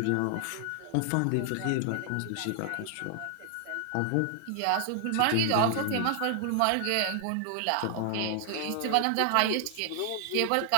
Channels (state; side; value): different; both; correlation 0.00